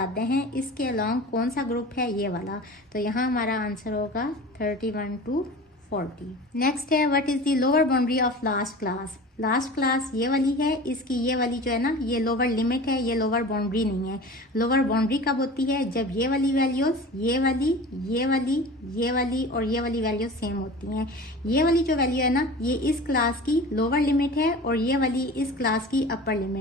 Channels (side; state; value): both; normal; correlation 0.37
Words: हैं। इसके अलॉन्ग कौन सा ग्रुप है, ये वाला। तो यहाँ हमारा आंसर होगा 31 to 40। नेक्स्ट है what is the lower boundary of last class. Last class ये वाली है, इसकी ये वाली जो है ना, ये लोअर लिमिट है, ये लोअर बाउंड्री नहीं है। लोअर बाउंड्री कब होती है, जब ये वाली वैल्यूज, ये वाली, ये वाली, ये वाली और ये वाली वैल्यूज सेम होती हैं। ये वाली जो वैल्यू है ना, ये इस क्लास की लोअर लिमिट है और ये वाली इस क्लास की अपर